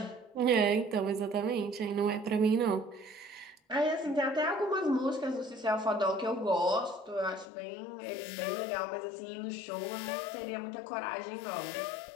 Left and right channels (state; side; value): drops out; right; at 7.5 s